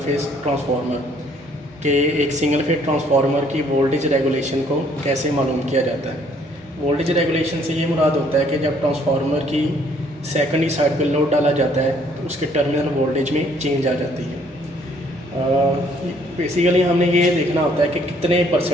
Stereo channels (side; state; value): both; normal; correlation 0.63